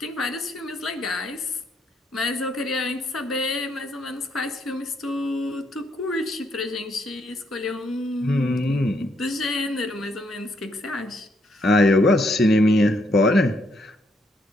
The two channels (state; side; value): normal; both; correlation 0.74